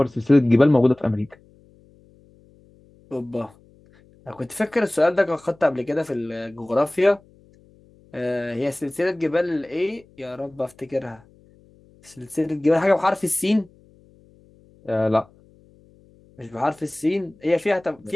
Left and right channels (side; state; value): left; noise; hum, 29 dB below the sound